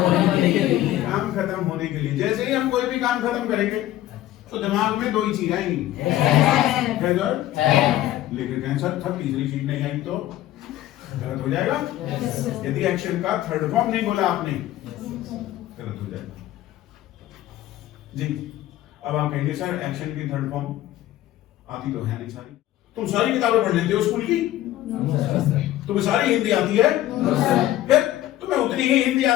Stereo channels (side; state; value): right; quieter; 14.3 dB